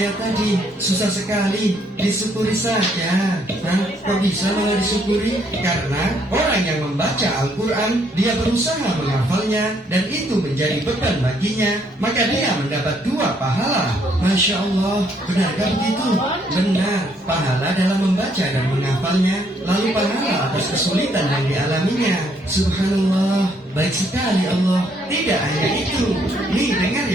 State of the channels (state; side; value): normal; both; correlation 0.69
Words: tadi. Susah sekali, disyukuri saja. Nah, kok bisa malah disyukuri? Karena orang yang membaca Al-Quran, dia berusaha menghafalnya, dan itu menjadi beban baginya, maka dia mendapat 2 pahala. Masya Allah, benarkah begitu? Benar, pahala dalam membaca dan menghafalnya, lalu pahala atas kesulitan yang dialaminya. Subhanallah, baik sekali Allah. Tidak hanya itu, nih dengar